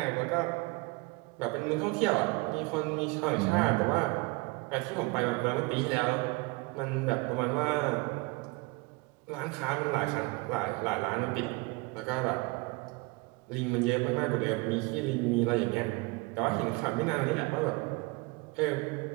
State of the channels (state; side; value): quieter; left; 26.4 dB